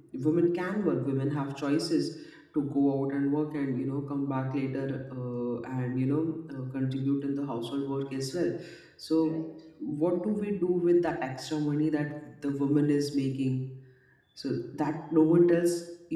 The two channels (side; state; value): both; identical; correlation 1.00